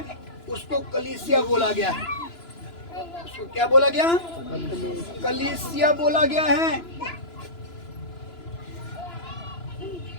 उसको कलीसिया बोला गया है। उसको क्या बोला गया? कलीसिया बोला गया है।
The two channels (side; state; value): right; late; 2.9 ms